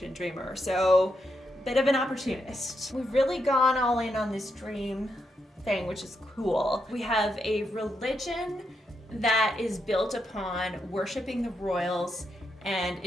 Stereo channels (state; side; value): normal; both; correlation 0.82